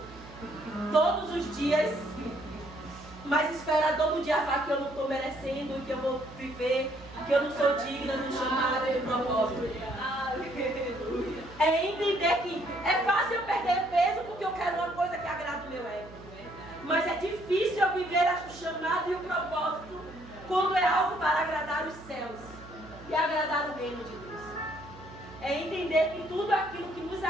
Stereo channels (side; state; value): right; noise; hum, 18 dB below the sound